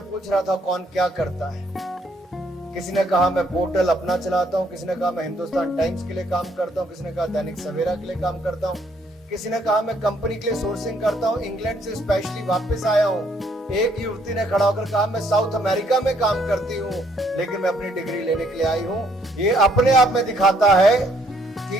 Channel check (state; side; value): normal; both; correlation 0.67